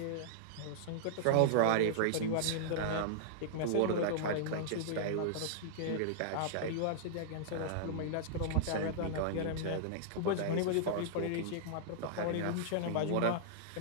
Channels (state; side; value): different; both; correlation -0.02